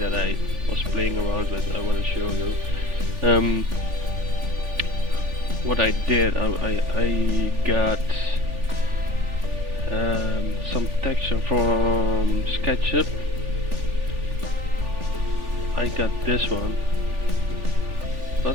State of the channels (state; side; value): late; left; 3.4 ms